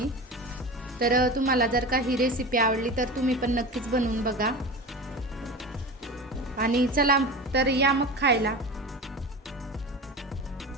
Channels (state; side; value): normal; both; correlation 0.30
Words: तर तुम्हाला जर का ही रेसिपी आवडली तर तुम्ही पण नक्कीच बनवून बघा. आणि चला तर या मग खायला.